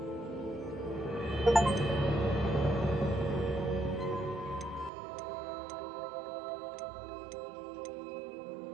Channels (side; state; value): left; drops out; at 4.9 s